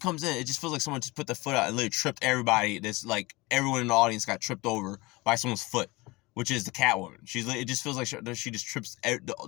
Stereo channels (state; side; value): quieter; right; 22.9 dB